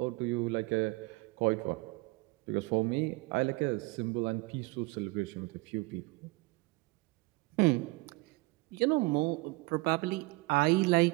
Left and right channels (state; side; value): quieter; left; 24.9 dB